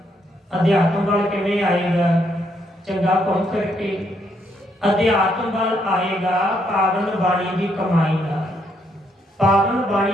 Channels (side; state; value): both; normal; correlation 0.74